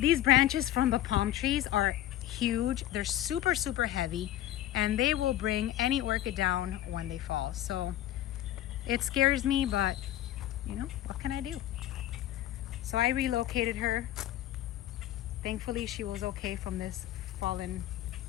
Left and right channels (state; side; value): quieter; right; 13.3 dB